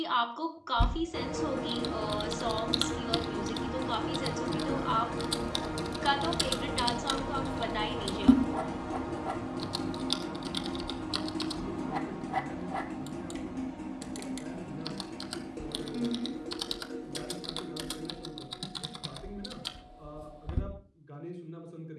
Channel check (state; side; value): identical; both; correlation 1.00